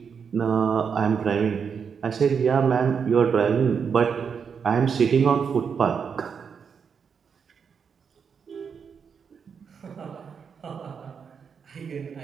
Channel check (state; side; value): quieter; left; 6.5 dB